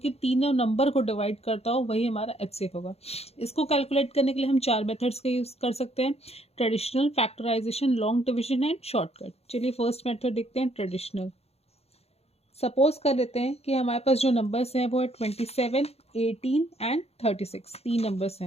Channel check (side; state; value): right; late; 0.30 ms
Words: तीनों नंबर को डिवाइड करता हो, वही हमारा एचसीएफ होगा। इसको कैलकुलेट करने के लिए हम 4 मेथड्स का यूज़ कर सकते हैं: traditional, factorization, long division and shortcut. चलिए फर्स्ट मेथड देखते हैं, ट्रेडिशनल। सपोज कर लेते हैं कि हमारे पास जो नंबर्स हैं वो है 27, 18 एंड 36। 3 नंबर्स